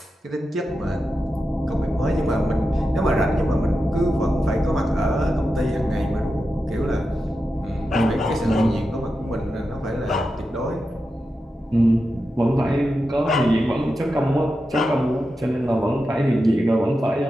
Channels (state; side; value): normal; both; correlation 0.90